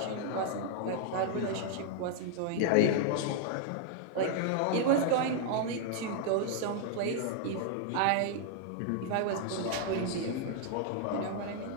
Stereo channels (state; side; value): different; both; correlation 0.00